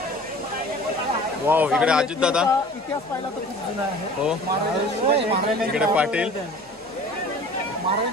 वाव. इकडे अजित दादा. इतिहास पाहिला तर खूप जुना आहे. हो. इकडे पाटील.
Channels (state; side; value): normal; both; correlation 0.44